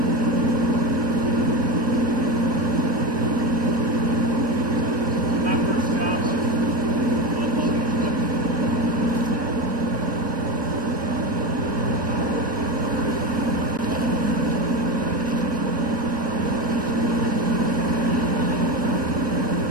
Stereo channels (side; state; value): both; normal; correlation 0.18